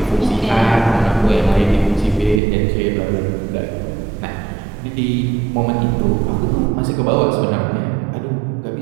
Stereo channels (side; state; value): left; drops out; at 2.4 s